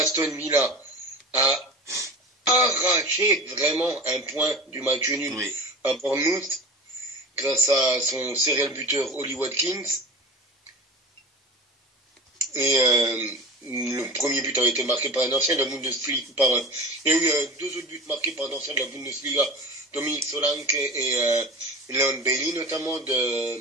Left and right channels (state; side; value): normal; both; correlation 0.32